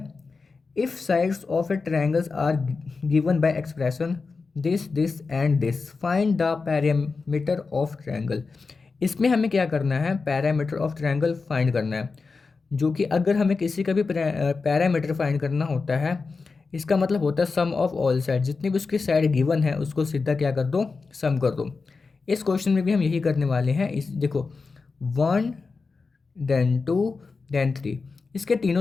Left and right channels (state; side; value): quieter; right; 4.4 dB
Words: if sides of a triangles are given by expression this and this, find the parameter of triangle. इसमें हमें क्या करना है, पैरामीटर ऑफ ट्रायंगल फाइंड करना है। जो कि अगर हमें किसी का भी पैरामीटर फाइंड करना होता है, इसका मतलब होता है सम ऑफ ऑल साइड, जितनी भी उसकी साइड गिवन है उसको सीधा क्या कर दो, सम कर दो। इस क्वेश्चन में भी हम यही करने वाले हैं। इस देखो 1 देन 2 देन 3, इसके